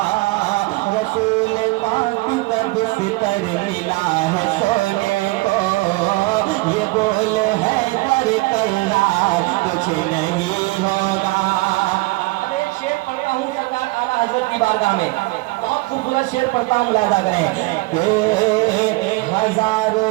रसूल पाक का बिस्तर मिला है सोने को, ये बोल है कर करार, कुछ नहीं होगा। अब एक शेर पढ़ता हूँ सरकार आला हजरत की बारगाह में, बहुत खूबसूरत शेर पढ़ता हूँ, मुलाजा करें। के हजारों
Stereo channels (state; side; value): quieter; left; 22.6 dB